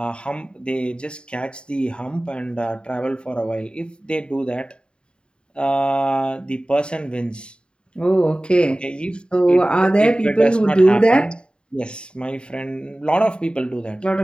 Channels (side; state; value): right; late; 0.051 ms